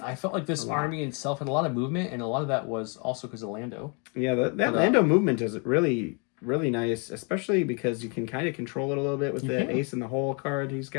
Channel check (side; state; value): right; quieter; 35.1 dB